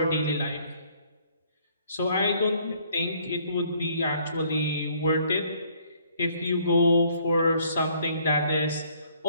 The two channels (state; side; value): inverted; both; correlation -0.63